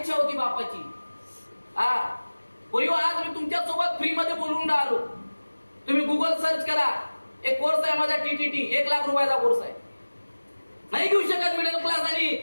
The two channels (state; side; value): inverted; both; correlation -1.00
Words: होती बापाची? पोरी आज मी तुमच्या सोबत फ्री मध्ये बोलून राहिलो. तुम्ही गुगल सर्च करा. एक कोर्स आहे माझा TTT, 1 लाख रुपयाचा कोर्स आहे. नाही घेऊ शकत मिडल क्लास आणि